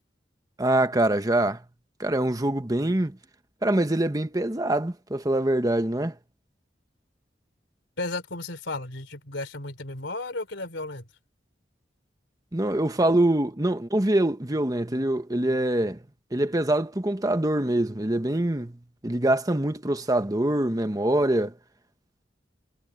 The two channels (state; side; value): normal; both; correlation 0.76